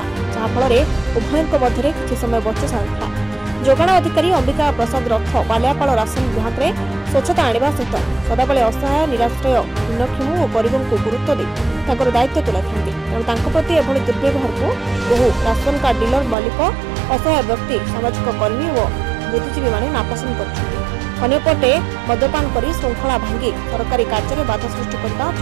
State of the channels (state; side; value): drops out; left; at 16.4 s